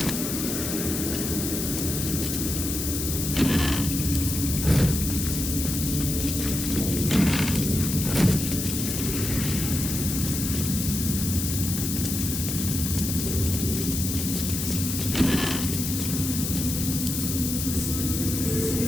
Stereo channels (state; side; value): noise; left; hiss, 3 dB below the sound